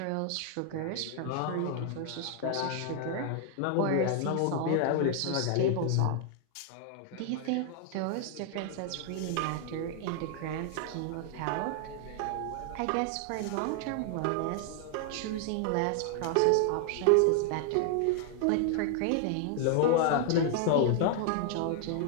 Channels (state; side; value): different; both; correlation 0.00